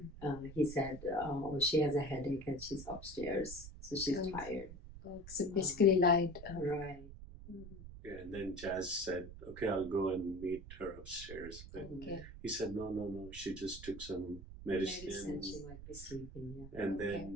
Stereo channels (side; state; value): right; noise; rumble, 13 dB below the sound